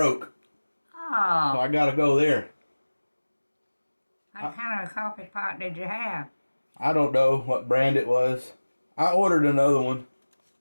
so Oh, I got to go there. what kind of coffee pot did you have? I don't know what brand it was. I ordered another one.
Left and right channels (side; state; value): both; inverted; correlation -1.00